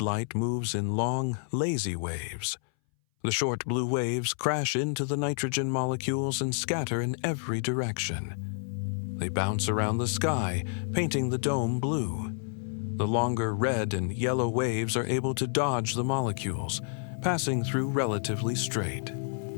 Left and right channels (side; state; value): right; silent; 58 dB below the other